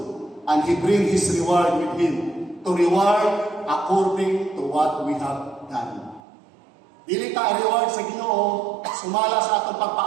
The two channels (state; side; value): drops out; left; at 6.2 s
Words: and He bring His reward with Him. To reward according to what we have done. Dili ta reward sa Ginoo sumala sa atong